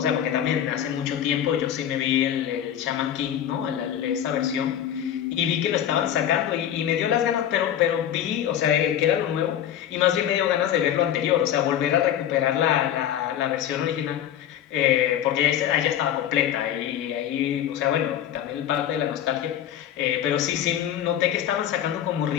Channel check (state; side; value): quieter; right; 10.5 dB